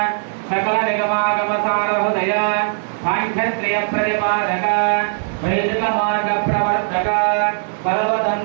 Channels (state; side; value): silent; left; 66 dB below the other